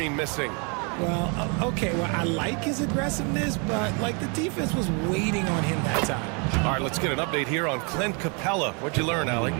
missing. Well, okay, well, I like his aggressiveness, but, like, the defense was waiting on him that time. All right, let's get an update here on Clint Capella. What'd you learn, Allie?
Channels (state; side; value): quieter; left; 34.8 dB